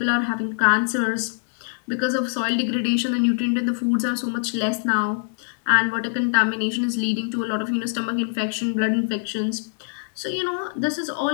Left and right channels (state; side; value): silent; right; 63 dB below the other